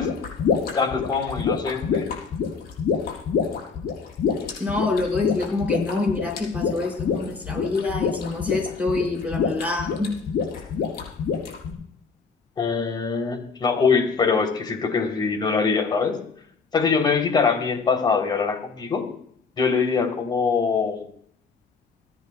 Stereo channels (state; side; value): quieter; right; 4.7 dB